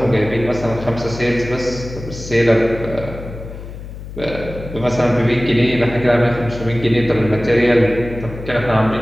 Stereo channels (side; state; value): left; noise; hum, 12 dB below the sound